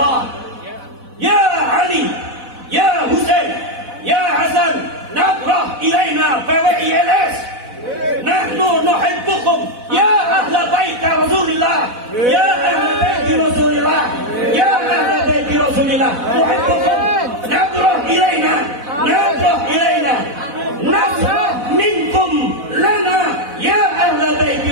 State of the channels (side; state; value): left; late; 4.1 ms